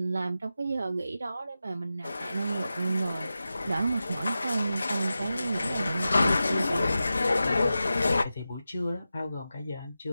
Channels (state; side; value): inverted; both; correlation -0.93